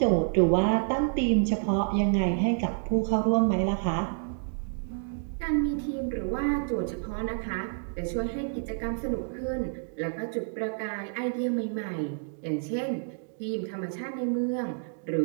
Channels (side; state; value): left; silent; digital silence